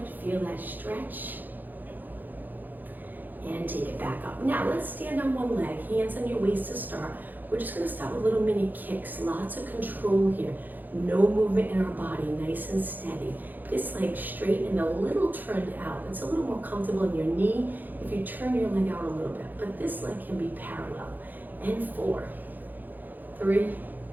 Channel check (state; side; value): late; left; 0.086 ms